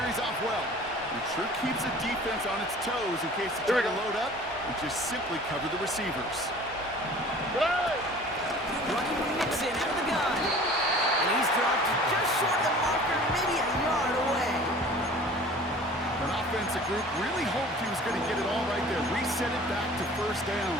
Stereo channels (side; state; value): both; normal; correlation 0.46